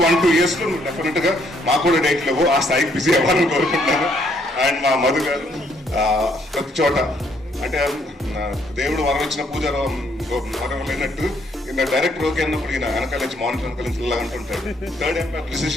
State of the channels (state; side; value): normal; both; correlation 0.69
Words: 1-2 yearsలో నువ్వు డెఫినెట్గా మాకు కూడా డేట్ లేవు, ఆ స్థాయికి బిజీ అవ్వాలని కోరుకుంటున్నాను. అండ్ మా మధు గారు ప్రతి చోట అంటే దేవుడు వరం ఇచ్చిన పూజ వరం లేనట్టు డైరెక్టర్ ఓకే అన్నప్పుడు ఈయన వెనకాల నుంచి మానిటర్ వెనకాల నుంచి ఇలా అంటుంటాడు. థర్డ్ ఎంపైర్